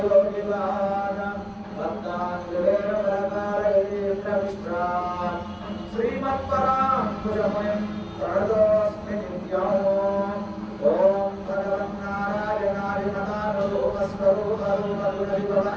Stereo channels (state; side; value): identical; both; correlation 1.00